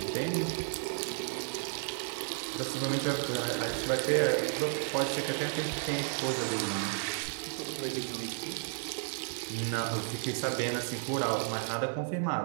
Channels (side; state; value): left; silent; 56 dB below the other